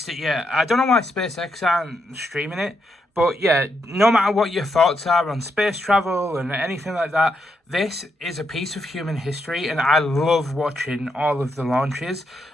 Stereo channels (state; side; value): normal; both; correlation 0.81